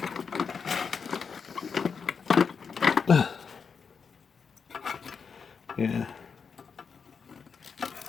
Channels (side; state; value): right; quieter; 5.9 dB